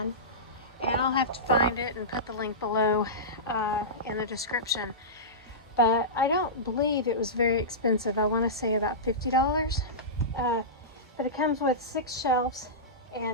and I'll have to find it and put the link below in the description. But I don't believe it was very expensive. I want to say about $50. But it comes with 6 shelves,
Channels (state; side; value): normal; both; correlation -0.17